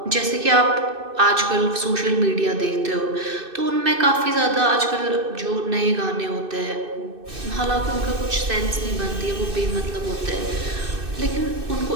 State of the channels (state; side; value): late; left; 2.6 ms